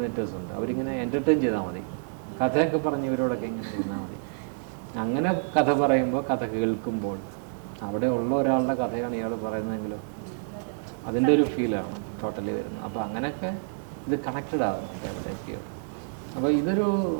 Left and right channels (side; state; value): left; silent; digital silence